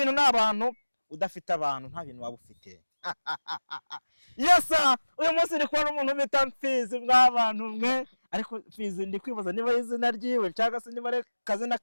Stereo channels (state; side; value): inverted; both; correlation -1.00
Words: n'abantu udafite abantu nta bintu waba ufite yes uyu munsi ni kwa umuntu bita Mfizi mw'abantu mwe ariko Mfizi ndi kwibaza niba izina ryiwe cyangwa se niba ari kazina